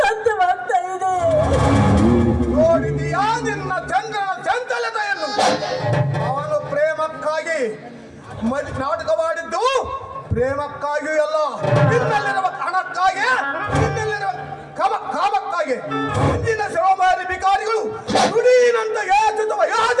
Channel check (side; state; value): both; identical; correlation 1.00